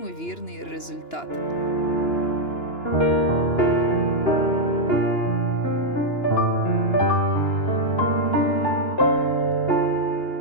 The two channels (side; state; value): right; late; 2.9 ms